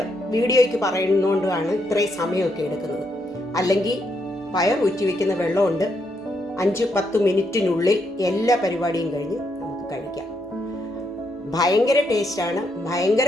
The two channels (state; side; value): normal; both; correlation 0.77